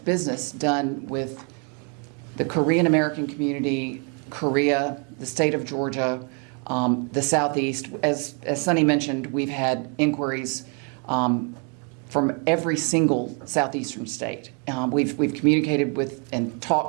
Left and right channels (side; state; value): left; quieter; 37.8 dB